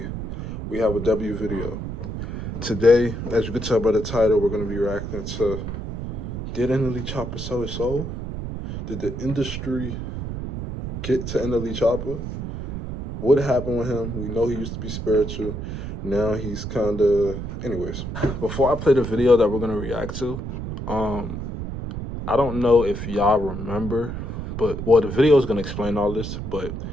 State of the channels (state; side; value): noise; right; rumble, 6 dB below the sound